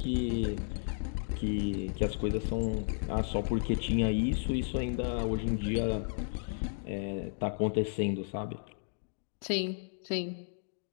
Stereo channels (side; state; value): right; silent; digital silence